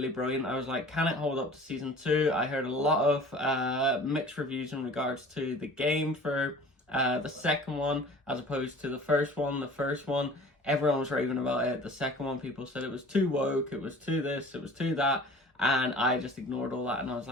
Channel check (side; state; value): both; normal; correlation 0.44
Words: brilliant. I was like, can it hold up to season 2? I heard a lot of mixed reviews in regards to the game for the second one as opposed to the first one. The first one, everyone was raving about it. The second one, people said it was too woke, it was too this, it was too that. And I just ignored all that, and I was